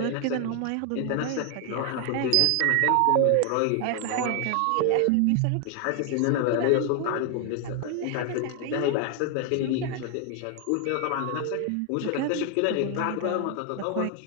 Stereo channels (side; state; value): both; different; correlation 0.00